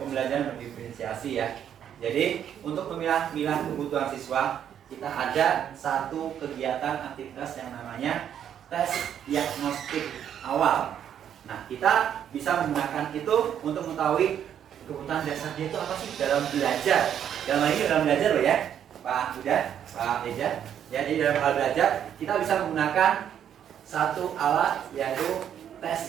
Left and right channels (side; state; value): left; quieter; 9.4 dB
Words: berdiferensiasi ya. Jadi, untuk memilah-milah kebutuhan siswa, kita ada satu kegiatan aktivitas yang namanya tes diagnostik awal. Nah, kita bisa menggunakan itu untuk mengetahui kebutuhan dasar dia itu apa sih dalam belajar. Dalam hal ini dalam belajar loh ya, Pak Buda, Pak Eja. Ya, jadi dalam hal belajar kita bisa menggunakan satu alat yaitu